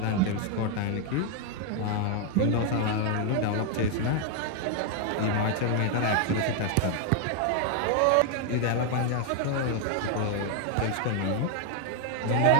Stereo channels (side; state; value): both; different; correlation 0.01